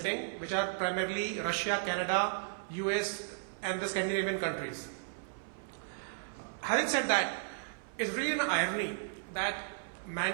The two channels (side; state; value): left; silent; 55 dB below the other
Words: which are primarily Russia, Canada, US, and the Scandinavian countries. Having said that, it's really an irony that